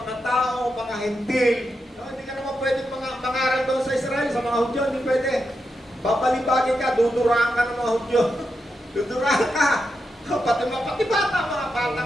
mga tao, mga hentil, hindi ka naman pwede mangaral doon sa Israel, sa mga Hudyo, hindi pwede. Babalibagin ka, duduraan ka ng mga Hudyo. Duduraan ka. Pati bata, mga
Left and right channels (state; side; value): normal; both; correlation 0.86